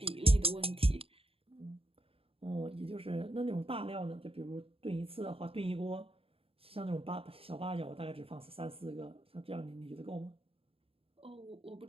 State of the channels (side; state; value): left; late; 0.27 ms